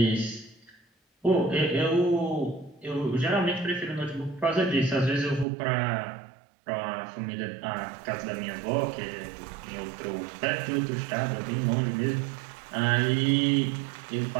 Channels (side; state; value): left; drops out; at 5.5 s